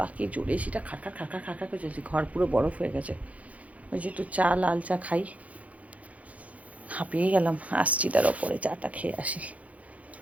কি জোরে সেটা খাকা খাকা খাকা করে চলছে, ঘর পুরো বরফ হয়ে গেছে। ওই যে একটু চা, লাল চা খাই, হাঁপিয়ে গেলাম। আসছি তার ওপরে চাটা খেয়ে আসি।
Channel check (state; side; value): late; left; 0.068 ms